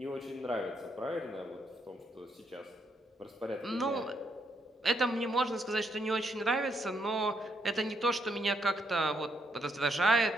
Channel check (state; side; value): normal; both; correlation 0.76